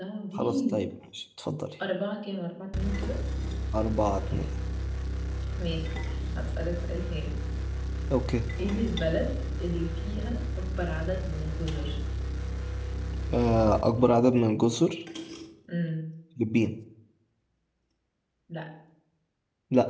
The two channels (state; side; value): identical; both; correlation 1.00